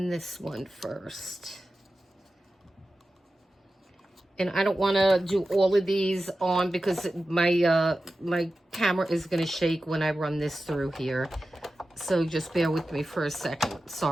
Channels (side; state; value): both; normal; correlation 0.93